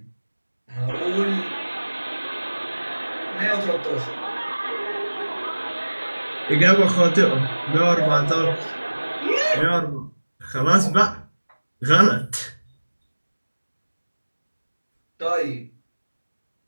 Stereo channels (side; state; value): both; inverted; correlation -1.00